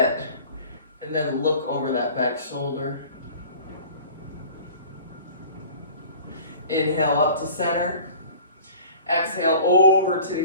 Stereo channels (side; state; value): both; inverted; correlation -0.45